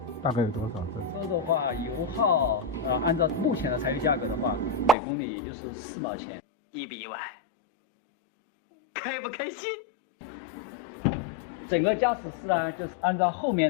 大概有多少？车的话，油耗按照目前的柴油价格的话，每公里也就是4毛钱。1比100，开不开心？整个驾驶室呢，就是按照后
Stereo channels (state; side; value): drops out; right; at 5.0 s